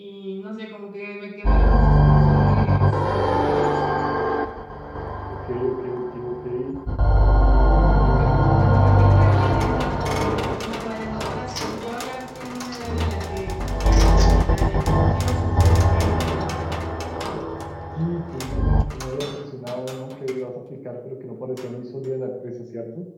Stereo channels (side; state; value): both; identical; correlation 1.00